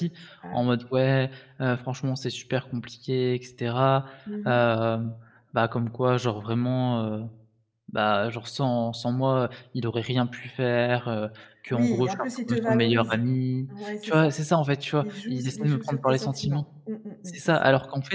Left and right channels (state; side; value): identical; both; correlation 1.00